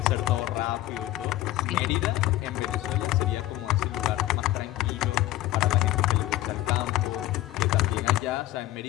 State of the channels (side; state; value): right; quieter; 15.5 dB